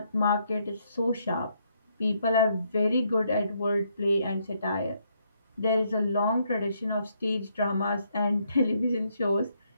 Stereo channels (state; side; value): inverted; both; correlation -0.73